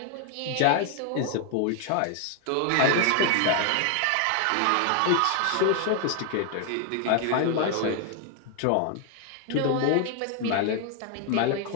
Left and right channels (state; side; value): different; both; correlation 0.00